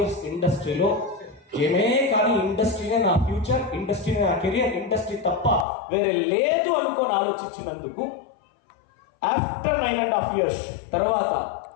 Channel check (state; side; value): drops out; right; at 5.7 s